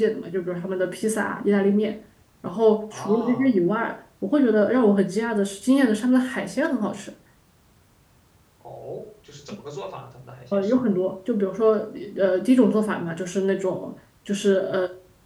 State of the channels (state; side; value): identical; both; correlation 1.00